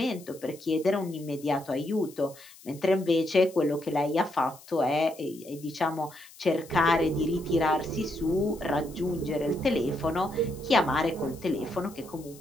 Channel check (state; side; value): noise; left; hiss, 21 dB below the sound